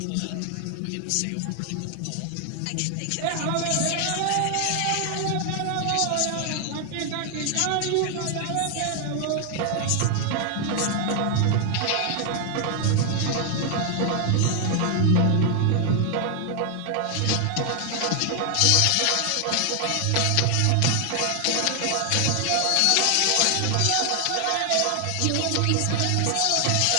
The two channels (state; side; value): different; both; correlation 0.00